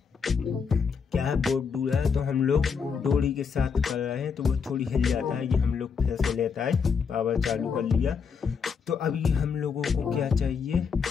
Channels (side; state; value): right; quieter; 6.0 dB